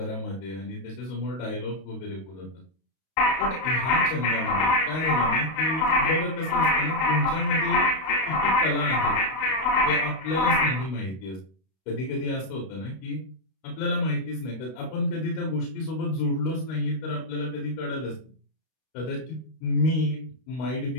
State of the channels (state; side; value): late; right; 32 ms